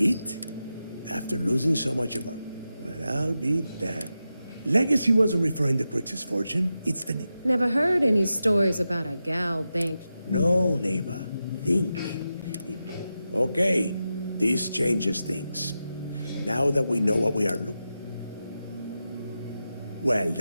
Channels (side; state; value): both; inverted; correlation -0.90